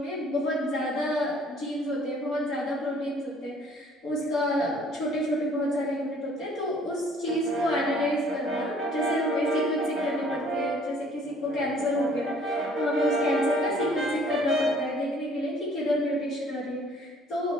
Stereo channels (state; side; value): normal; both; correlation 0.57